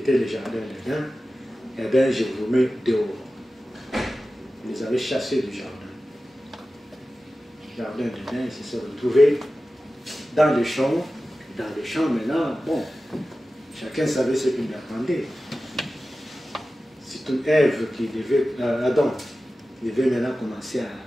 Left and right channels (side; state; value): both; normal; correlation 0.95